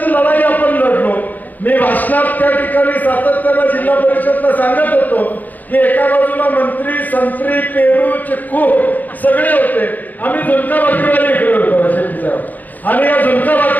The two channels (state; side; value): late; right; 0.082 ms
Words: लढाई आपण लढलो. मी भाषणात त्या ठिकाणी सातत्यानं जिल्हा परिषदला सांगत होतो की एका बाजूला मंत्री, संत्री, पेरू, चिक्कू सगळे होते, आम्ही झुणका भाकरीवाले इकडे होतो शेट्टी साहेब, आणि या झुणका